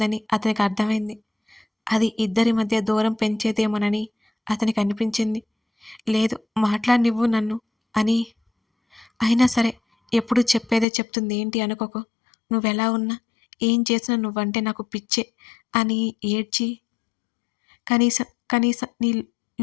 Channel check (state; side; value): drops out; right; at 10.9 s